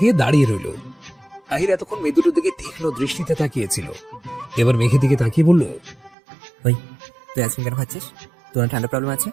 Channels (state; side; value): drops out; left; at 6.2 s